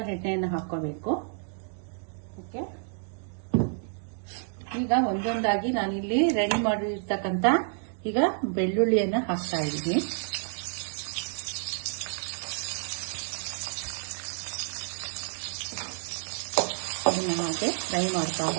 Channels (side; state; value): left; silent; digital silence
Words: ಎಣ್ಣೆಯನ್ನು ಹಾಕೋಬೇಕು. ಓಕೆ, ಈಗ ಒಂದೊಂದಾಗಿ ನಾನಿಲ್ಲಿ ರೆಡಿ ಮಾಡಿರ್ತಕ್ಕಂಥ ಈಗ ಬೆಳ್ಳುಳ್ಳಿಯನ್ನ ಹಾಕ್ತಾ ಇದ್ದೀನಿ. ಅದನ್ನ ಹಾಗೆ ಫ್ರೈ ಮಾಡ್ತಾ